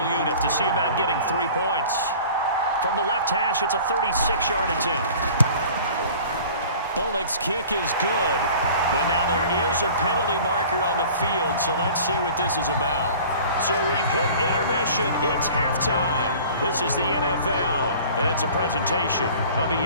unit to see about getting 3 points. From the left hash, it's a 36-yard attempt. Bullock's kick is good, but now there is a penalty marker on the field, so let's see what this is about. So we've hit intermission. It's halftime. This is the NFL, and it's a presentation of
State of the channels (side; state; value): both; inverted; correlation -0.45